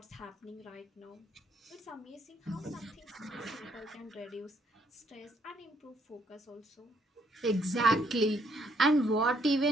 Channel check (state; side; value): normal; both; correlation 0.70